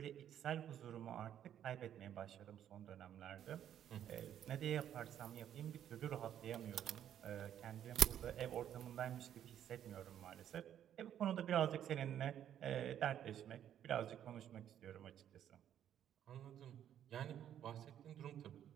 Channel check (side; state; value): left; quieter; 10.3 dB